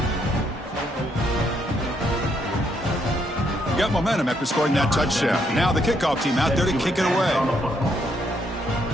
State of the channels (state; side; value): normal; both; correlation 0.74